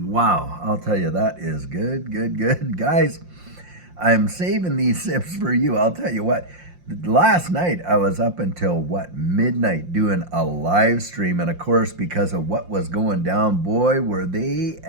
I'll tell you, that is good. Guys, I'm saving these sips for you. I'll tell you what. Last night I was up until midnight doing a live stream, and of course, because of what was going down, boy, were they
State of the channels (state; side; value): late; left; 5.7 ms